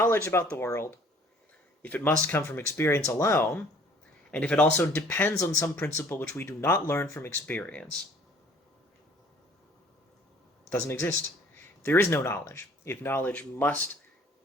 about the world, if it must come from experience alone, and if it also depends on some principle which we do not learn from experience, doesn't exist. There is no knowledge. If knowledge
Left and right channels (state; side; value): normal; both; correlation 0.55